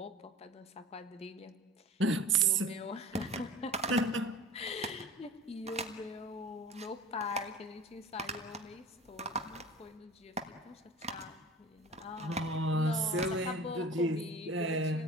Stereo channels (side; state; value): both; normal; correlation 0.40